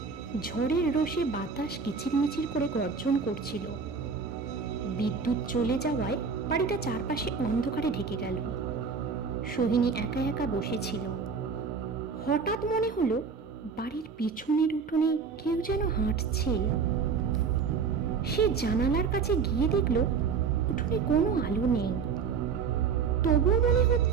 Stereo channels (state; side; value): quieter; left; 5.6 dB